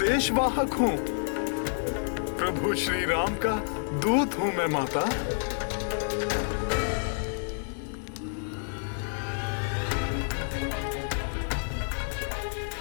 हूँ। प्रभु श्री राम का दूत हूँ मैं माता।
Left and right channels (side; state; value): right; silent; 58 dB below the other